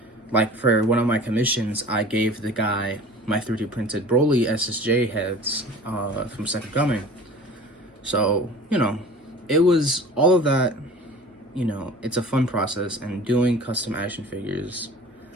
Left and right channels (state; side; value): normal; both; correlation 0.42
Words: like for one of my commissions, I gave the guy my 3D printed Broly SSJ heads from Second Coming. So, you know, it was all of that, you know, it's a fun process, and doing custom action figures,